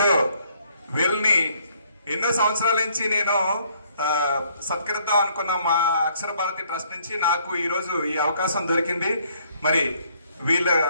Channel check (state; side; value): inverted; both; correlation -0.65